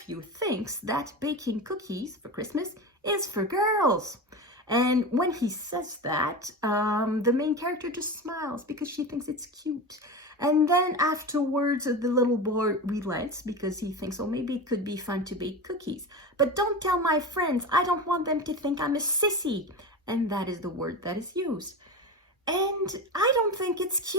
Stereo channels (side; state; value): both; normal; correlation 0.25